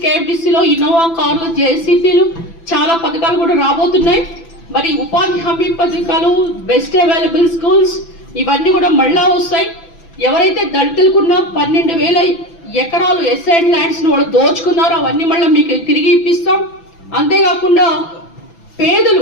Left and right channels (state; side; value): late; right; 6.0 ms